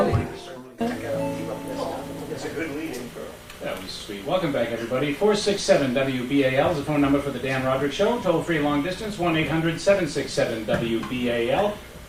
It's a good lead-in for... That was sweet. Welcome back, everybody. 467-WBAL is the phone number for the Dan Rodricks Show. Toll-free long distance, 1-800-767-WBAL.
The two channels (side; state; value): both; identical; correlation 1.00